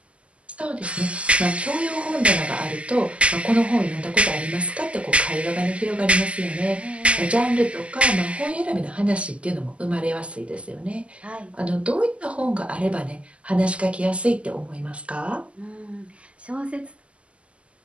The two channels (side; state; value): left; late; 0.058 ms